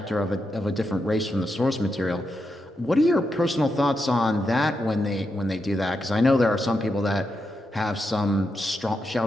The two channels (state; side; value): normal; both; correlation 0.85